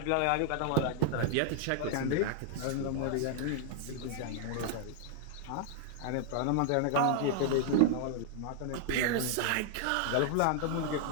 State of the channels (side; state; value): both; different; correlation -0.01